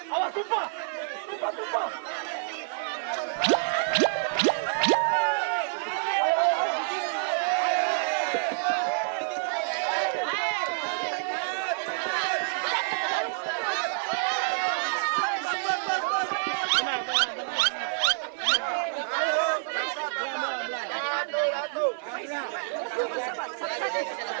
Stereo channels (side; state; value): left; silent; 59 dB below the other